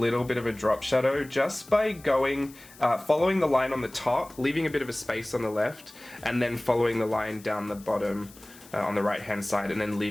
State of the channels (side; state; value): left; noise; hiss, 22 dB below the sound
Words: bit of a drop shadow just by going, following the line on the top, leaving a bit of a space on the left, and then following the line down the bottom on the right hand side, and then